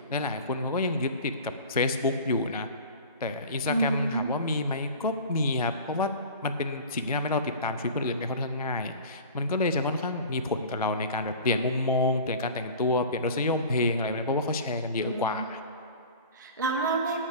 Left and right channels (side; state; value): both; inverted; correlation -0.39